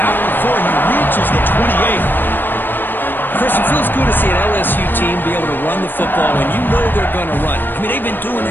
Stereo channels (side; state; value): right; late; 0.094 ms